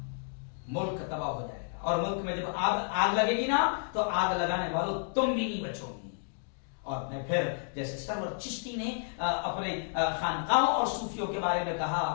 ملک تباہ ہو جائے گا. اور ملک میں جب آگ لگے گی نا تو آگ لگانے والوں تم بھی نہیں بچو گی. اور میں پھر جیسے سرور چشتی نے اپنے خانقاہوں اور صوفیوں کے بارے میں کہا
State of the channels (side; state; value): right; silent; digital silence